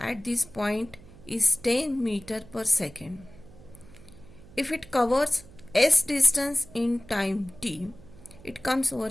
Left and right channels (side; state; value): right; noise; hum, 21 dB below the sound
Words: this point is 10 meter per second, if it covers s distance in time t, it comes over